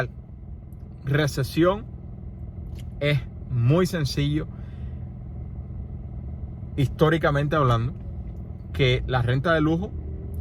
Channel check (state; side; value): identical; both; correlation 1.00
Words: recesión es muy sencillo, históricamente hablando, que la renta de lujo,